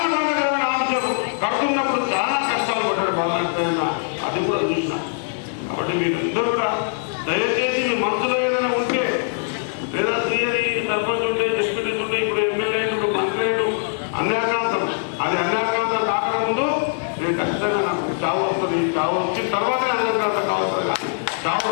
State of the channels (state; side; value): silent; right; digital silence